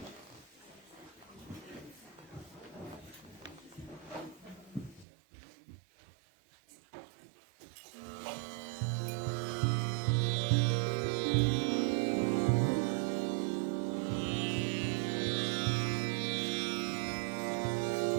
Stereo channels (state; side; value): drops out; left; at 5.1 s